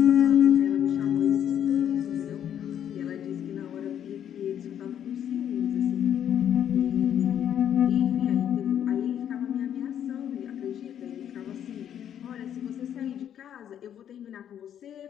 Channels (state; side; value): quieter; right; 9.7 dB